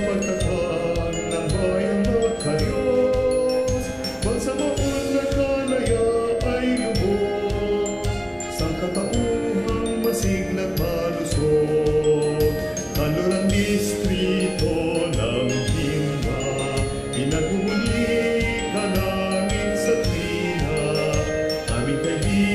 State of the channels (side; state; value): both; identical; correlation 1.00